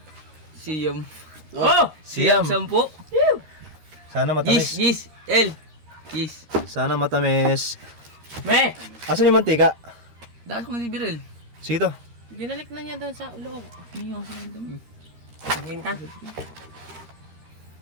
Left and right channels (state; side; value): late; left; 13 ms